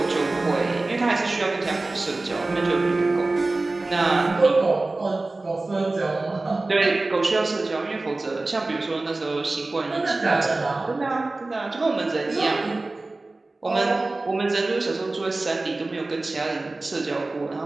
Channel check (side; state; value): left; quieter; 3.1 dB